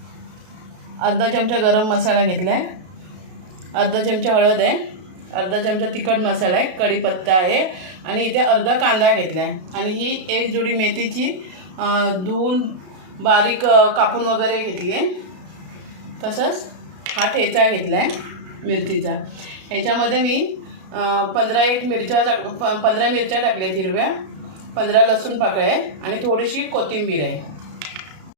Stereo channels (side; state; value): left; late; 32 ms